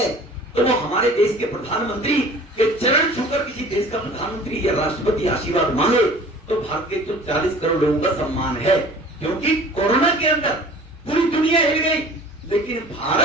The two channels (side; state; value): both; normal; correlation 0.46